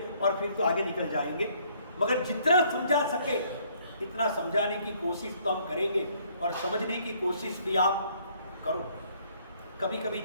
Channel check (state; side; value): inverted; both; correlation -0.64